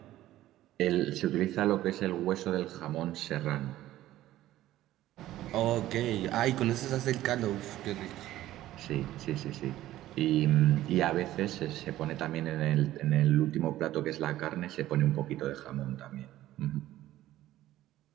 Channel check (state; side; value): quieter; left; 14.5 dB